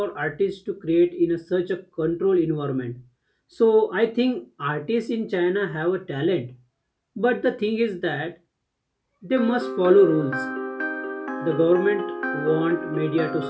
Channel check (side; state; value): both; identical; correlation 1.00